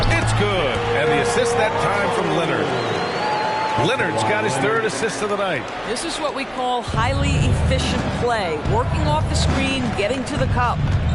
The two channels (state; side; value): identical; both; correlation 1.00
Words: It's good. And the assist that time from Leonard. Leonard's got his 3rd assist of the night. This is what we call highly efficient play. Working off the screen, getting to the cup.